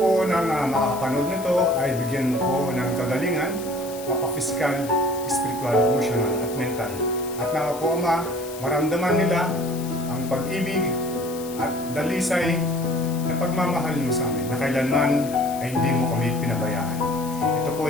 ng makakapanood nito ay bigyan mo po ng kagalingan, mapa-physical, spiritual, emotional, at mental. At nawa po Ama, maramdaman nila ang pag-ibig at dalisay na pagmamahal mo sa amin na kailanman ay hindi mo kami pinabayaan. Ito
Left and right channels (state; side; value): noise; left; hiss, 15 dB below the sound